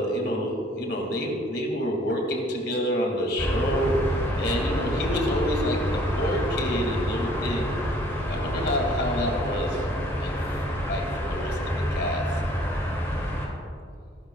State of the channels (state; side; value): normal; both; correlation 0.57